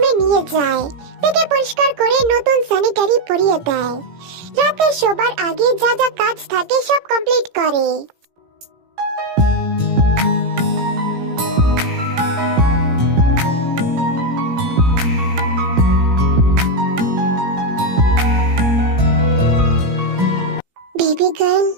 নিয়ে যায়। তাকে পরিষ্কার করে নতুন স্যানিটারি পরিয়ে দেয়। রাতে শোবার আগে যা যা কাজ থাকে সব কমপ্লিট করে। Baby girl,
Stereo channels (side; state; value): left; late; 17 ms